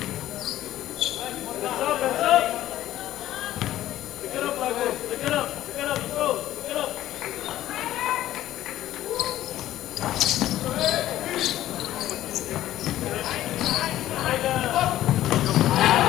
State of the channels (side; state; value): right; quieter; 13.7 dB